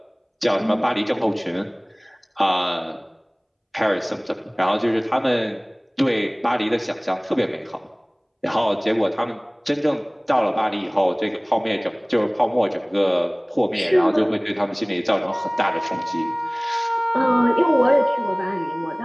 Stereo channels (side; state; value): both; identical; correlation 1.00